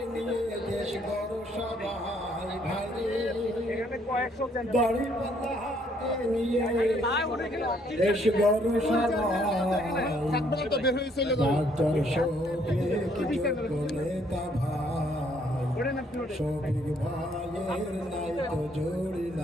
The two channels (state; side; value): normal; both; correlation 0.67